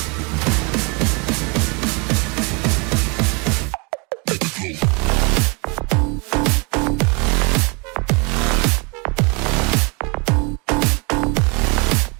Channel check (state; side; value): quieter; left; 31.2 dB